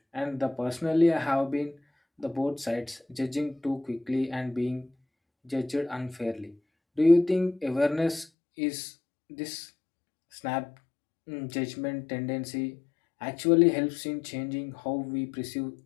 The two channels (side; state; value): right; drops out; at 8.2 s